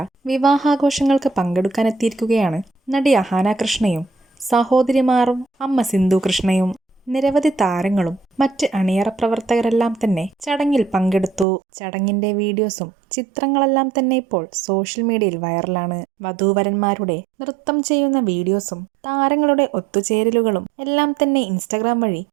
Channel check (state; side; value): drops out; left; at 11.5 s